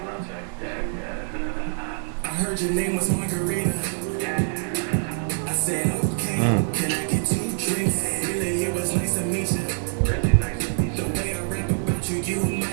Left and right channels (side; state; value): left; silent; digital silence